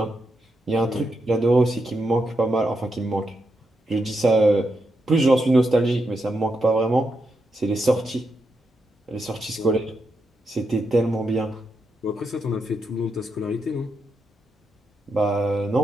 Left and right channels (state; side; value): normal; both; correlation 0.83